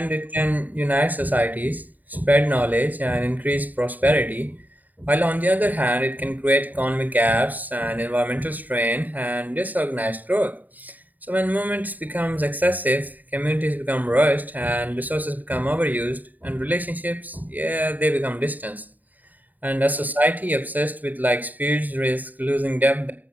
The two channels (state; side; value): late; left; 0.083 ms